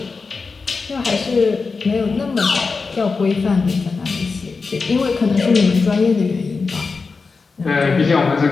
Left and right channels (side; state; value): right; quieter; 4.5 dB